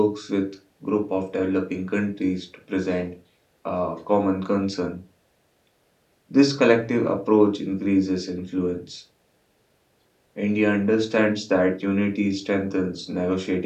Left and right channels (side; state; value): both; identical; correlation 1.00